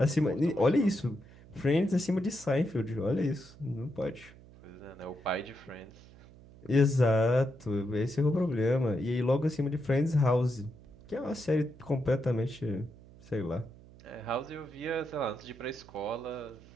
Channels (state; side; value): noise; right; hum, 22 dB below the sound